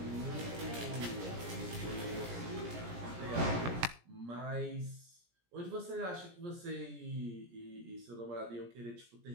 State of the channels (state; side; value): late; left; 17 ms